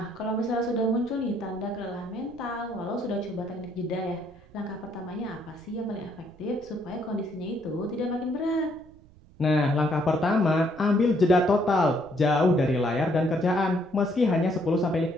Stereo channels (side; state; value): right; noise; rumble, 25 dB below the sound